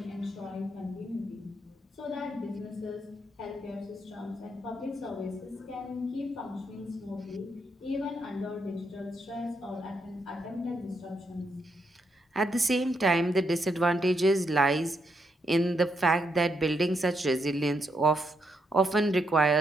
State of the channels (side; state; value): both; normal; correlation 0.79